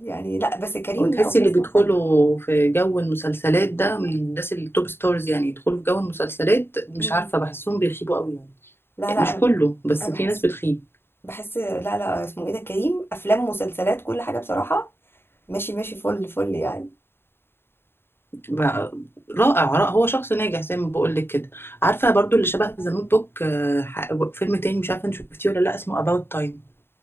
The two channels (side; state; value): right; late; 0.11 ms